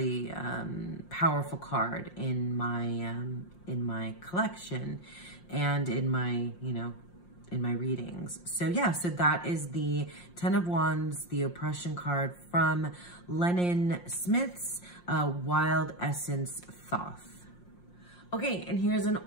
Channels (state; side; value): late; right; 5.6 ms